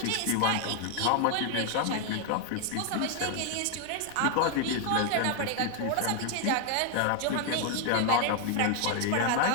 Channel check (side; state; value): both; different; correlation 0.00